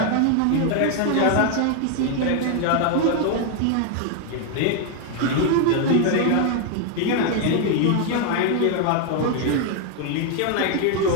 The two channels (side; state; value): both; different; correlation 0.00